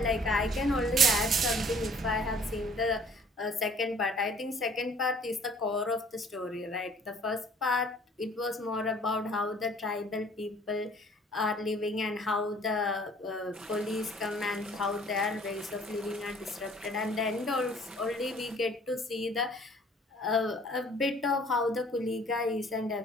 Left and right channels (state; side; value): normal; both; correlation 0.55